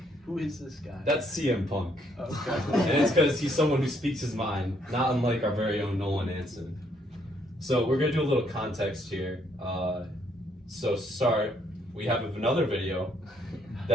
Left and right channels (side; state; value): both; normal; correlation 0.70